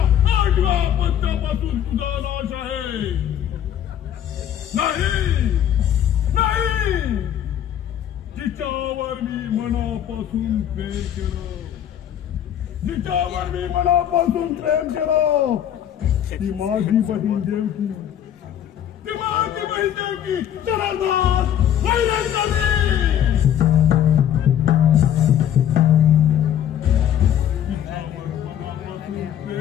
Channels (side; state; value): right; quieter; 10.1 dB